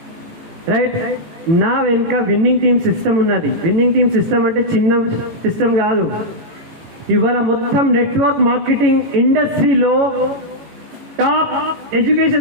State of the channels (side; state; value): left; late; 18 ms